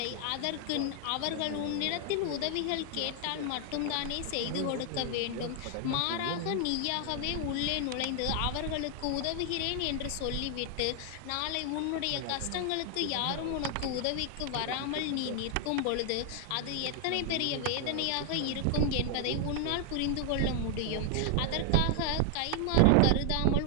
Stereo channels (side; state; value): both; different; correlation 0.00